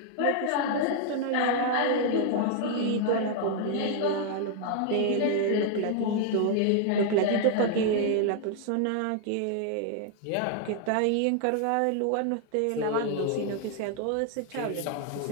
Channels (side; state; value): both; different; correlation 0.00